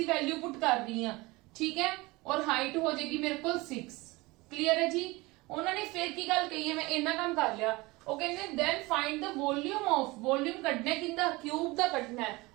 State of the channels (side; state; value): left; quieter; 22.6 dB